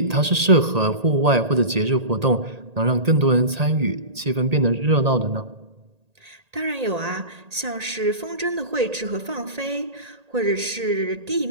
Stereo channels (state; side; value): late; left; 1.8 ms